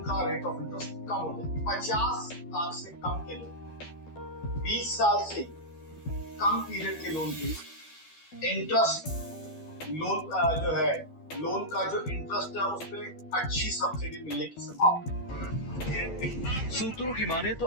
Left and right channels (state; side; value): late; right; 12 ms